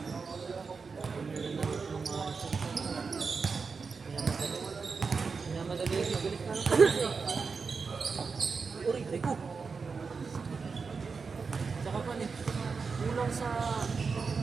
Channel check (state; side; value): quieter; left; 5.0 dB